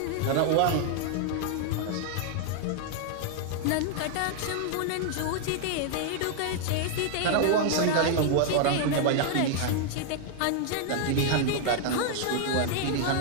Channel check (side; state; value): both; different; correlation 0.00